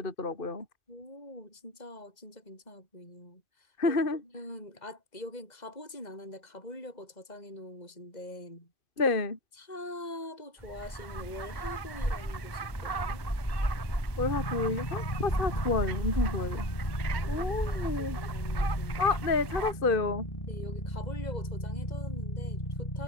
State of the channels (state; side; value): late; right; 1.2 ms